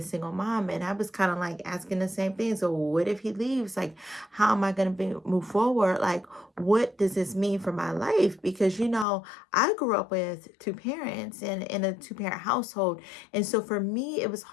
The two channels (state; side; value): drops out; right; at 9.1 s